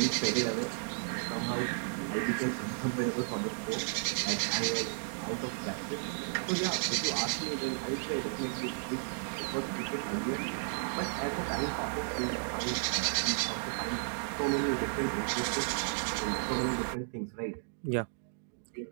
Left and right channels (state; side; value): silent; left; digital silence